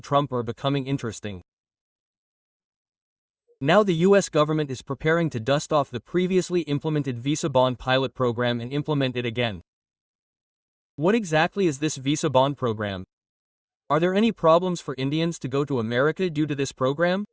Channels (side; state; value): both; identical; correlation 1.00